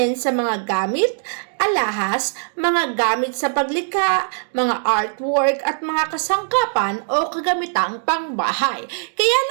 sa mga gamit, alahas, mga gamit sa paglikha, mga artwork at mga kasangkapan o kagamitang pangbahay. Kaya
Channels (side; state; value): left; silent; digital silence